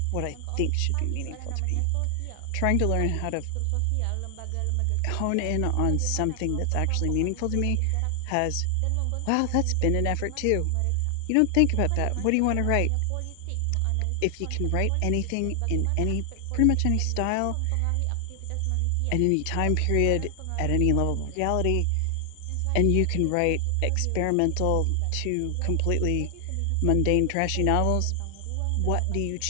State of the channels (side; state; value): both; different; correlation 0.00